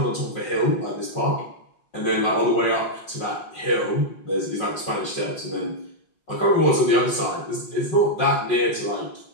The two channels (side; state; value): right; late; 5.6 ms